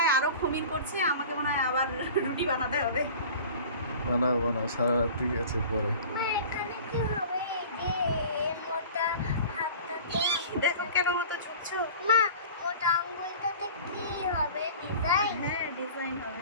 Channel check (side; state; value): both; inverted; correlation -0.41